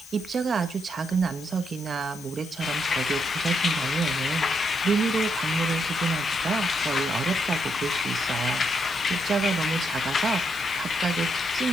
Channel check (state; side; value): noise; left; hiss, 18 dB below the sound